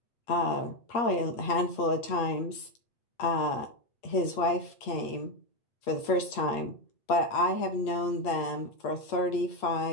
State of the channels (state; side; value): late; right; 8.5 ms